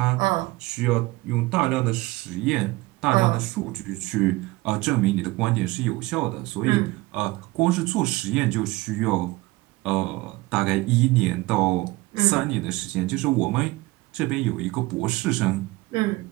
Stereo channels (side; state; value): left; quieter; 20.8 dB